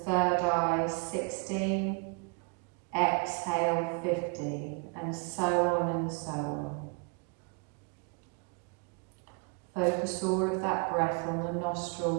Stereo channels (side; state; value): left; quieter; 32.8 dB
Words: 3rd eye, 16, exhale 50, and so on and so on. Focus all of that breath on the